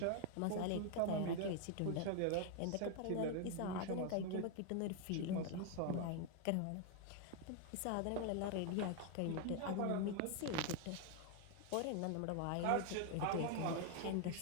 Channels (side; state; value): both; different; correlation 0.01